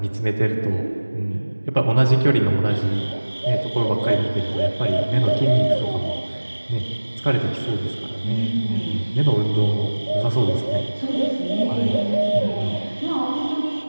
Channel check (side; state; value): both; inverted; correlation -1.00